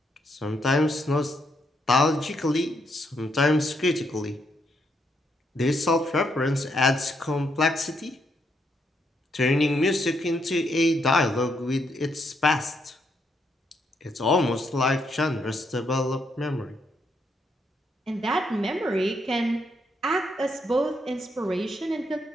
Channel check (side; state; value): both; normal; correlation 0.76